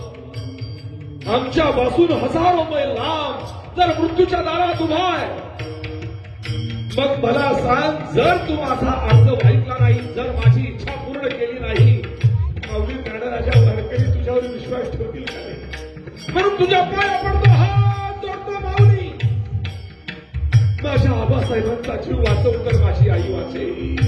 आमच्यापासून हजारो मैल लांब जर मृत्यूच्या दारात उभा आहे. मग मला सांग, जर तू माझा अर्ज ऐकला नाही, जर माझी इच्छा पूर्ण केली नाही, माऊली ज्ञानराजा वारकरी तुझ्यावर विश्वास ठेवतील का नाही? म्हणून तुझ्या पाया पडतो, हात जोडतो माऊली. माझ्या आबासाहेबांचा जीव वाचव तर माझी आई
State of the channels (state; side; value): identical; both; correlation 1.00